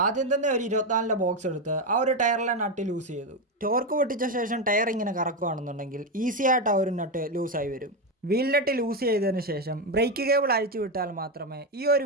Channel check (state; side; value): normal; both; correlation 0.10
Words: ആദ്യം തന്നെ ഒരു 24ന്റെ ബോക്സ് എടുത്ത് ആ ഒരു ടയറിലെ നട്ട് ലൂസ് ചെയ്തു. ടോർക്ക് പൊട്ടിച്ച ശേഷം ടയർ ഇങ്ങനെ കറക്കുകയാണെന്നുണ്ടെങ്കിൽ ഈസി ആയിട്ട് ആ ഒരു നട്ട് ലൂസായി വരും. വീൽ നട്ട് ലൂസ് ചെയ്തതിന് ശേഷം ബ്രേക്ക് കേബിൾ അഴിച്ചു വിട്ടാൽ മാത്രമേ ഈ ഒരു